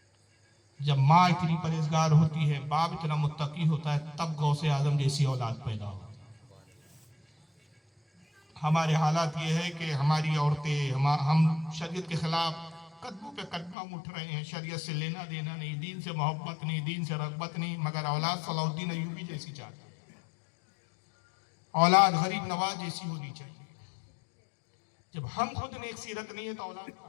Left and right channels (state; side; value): drops out; right; at 13.8 s